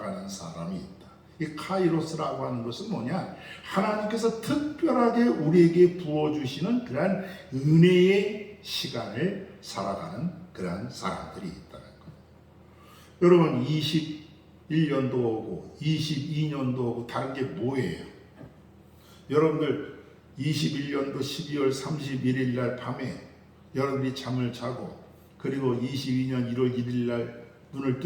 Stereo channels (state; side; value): identical; both; correlation 1.00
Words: 사람이 있다. 이 카이로스라고 하는 것은 뭐냐? 하나님께서 특별하게 우리에게 부어주시는 그러한 은혜의 시간을 살아가는 그러한 사람들이 있다는 거예요. 여러분 21년도 오고 22년도 오고 다른 게 뭐예요? 여러분들 21년도 12월 31일 날 밤에 여러분들이 잠을 자고 그리고 22년 1월 1일 날 눈을